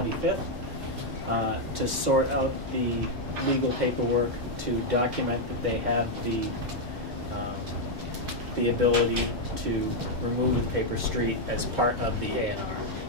to sort out the legal paperwork to document that they have the ability to remove the paper street as part of the A&R.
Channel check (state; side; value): normal; both; correlation 0.00